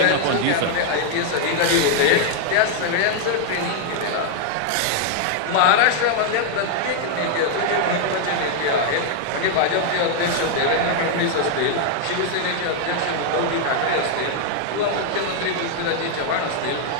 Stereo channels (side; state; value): both; different; correlation 0.00